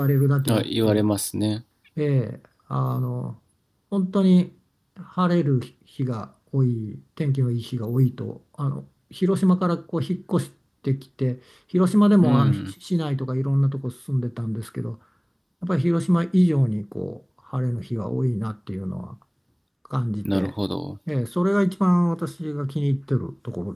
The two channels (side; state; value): both; identical; correlation 1.00